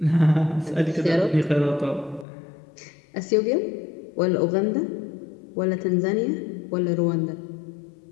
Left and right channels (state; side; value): drops out; right; at 2.2 s